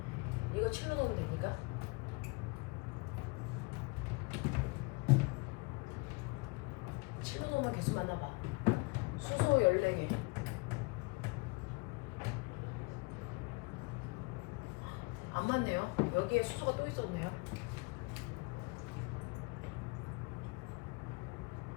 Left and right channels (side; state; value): right; quieter; 28.3 dB